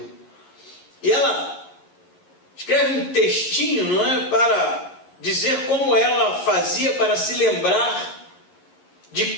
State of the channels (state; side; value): late; right; 11 ms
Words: E ela escreve um textinho, não é, para dizer como ela fazia para se lembrar de